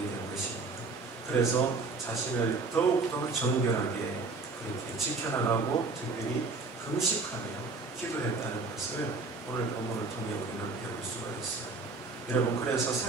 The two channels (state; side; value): quieter; left; 3.8 dB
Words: 된 것입니다. 그래서 자신을 더욱더 정결하게 그렇게 지켜나가고 특별히 금식하며 기도했다는 것을 오늘 본문을 통해 우리는 배울 수가 있어요. 여러분, 그래서